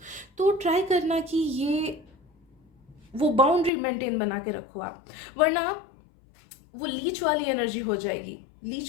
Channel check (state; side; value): drops out; right; at 3.7 s